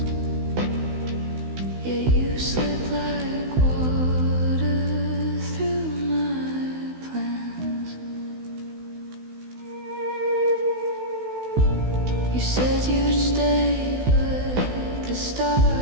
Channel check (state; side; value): late; left; 16 ms